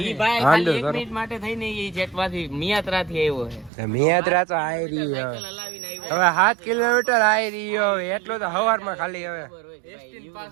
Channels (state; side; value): drops out; left; at 3.7 s